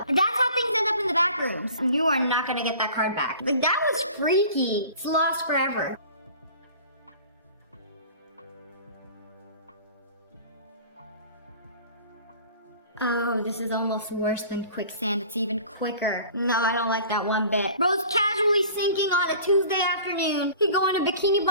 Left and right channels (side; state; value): both; inverted; correlation -0.45